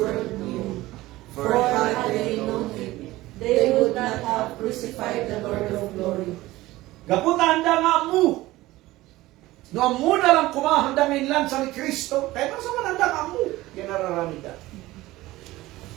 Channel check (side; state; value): left; quieter; 17.9 dB